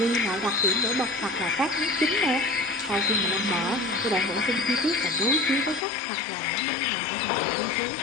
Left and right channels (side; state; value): right; drops out; at 5.9 s